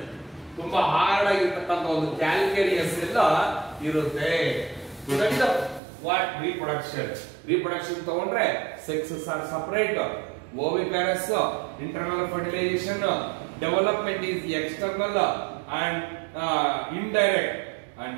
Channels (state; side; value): drops out; left; at 5.8 s